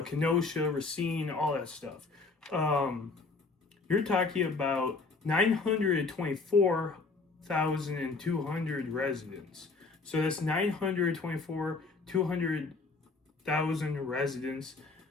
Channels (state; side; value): quieter; right; 4.0 dB